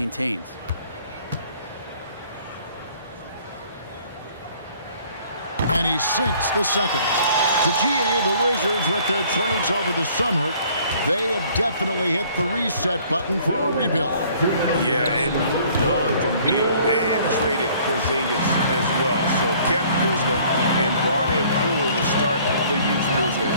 And he sinks the second. To GA, the Wizards, with their trades over the summer, they have definitely hit the reset button for a rebuild. Yeah, it moved on from Beal and traded Porzingis as well. So kept Kuzma and brought in Poole to start the youth movement.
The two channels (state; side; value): inverted; both; correlation -0.57